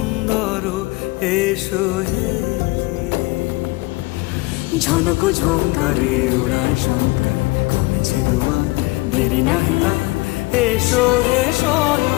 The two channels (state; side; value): quieter; right; 22.5 dB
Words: এসো হে ঝনক ঝঙ্কারে উড়ায় শঙ্কার খুলেছে দুয়ার দেরি নাহি আর এসো হে